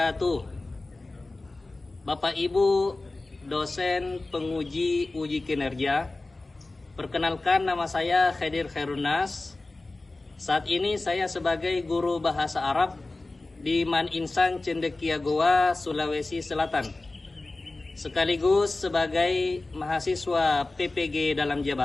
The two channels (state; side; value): quieter; right; 3.1 dB